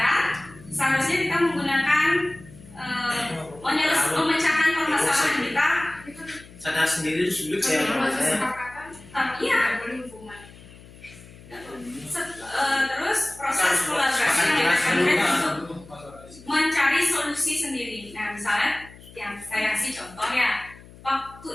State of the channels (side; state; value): left; noise; hum, 21 dB below the sound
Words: seharusnya kita menggunakan memecahkan permasalahan kita. Sadar sendiri itu sulit ya kalau saya. Iya. Terus proses kolaborasi yang dilakukan untuk mencari solusi sendiri. Nah, misalnya yang saya kasih contoh ya, waktu